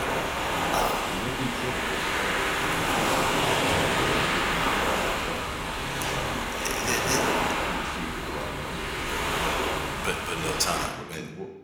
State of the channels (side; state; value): both; identical; correlation 1.00